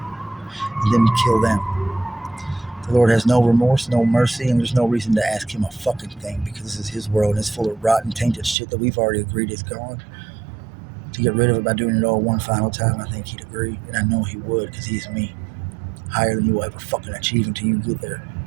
And then kill them. The Lord has no remorse, no mercy, and there's no reason to ask him a fucking thing because this is his world and it's full of rotten, tainted shit that we've already agreed is gone. To get rid of it by doing it all one final time, I think he'd agree. And I know he would because he's me. Higher than you will ever fucking achieve until you get there.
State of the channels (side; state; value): left; drops out; at 8.6 s